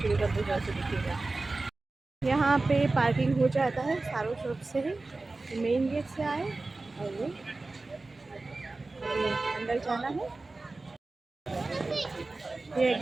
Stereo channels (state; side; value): quieter; left; 3.3 dB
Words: को अंत तक जरूर से देखिएगा। यहाँ पे पार्किंग हो जाता है सारों शॉप से ही, मेन गेट से आए और ये अंदर जाना है। ये